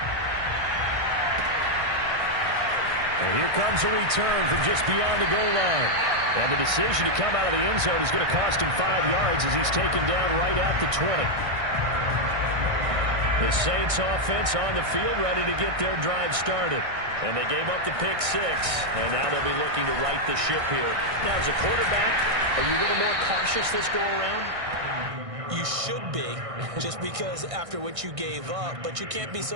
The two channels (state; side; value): late; left; 1.6 ms